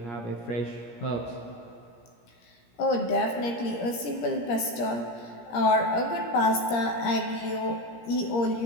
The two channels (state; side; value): late; right; 17 ms